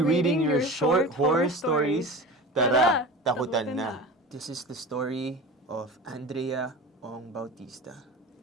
reading your short horror stories. Tara, takutan na. This is the story of Andrea Ong Bautista.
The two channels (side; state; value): both; normal; correlation 0.33